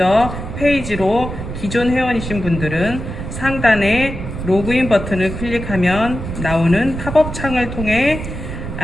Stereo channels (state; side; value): noise; right; rumble, 7 dB below the sound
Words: 페이지로 기존 회원이신 분들은 상단에 로그인 버튼을 클릭하면 나오는 팝업 창을 통해